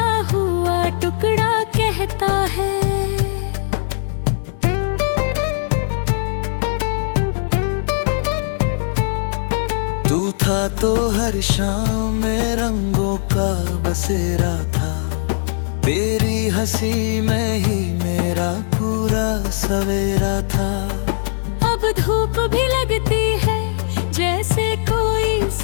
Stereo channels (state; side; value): silent; right; digital silence